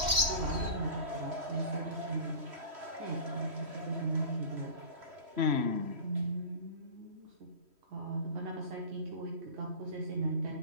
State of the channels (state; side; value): late; left; 3.1 ms